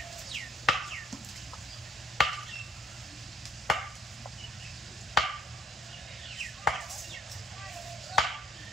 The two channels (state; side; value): normal; both; correlation 0.64